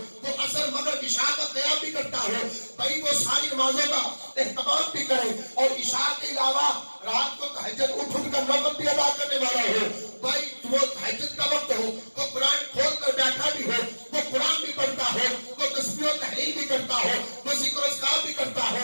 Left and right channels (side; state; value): both; inverted; correlation -1.00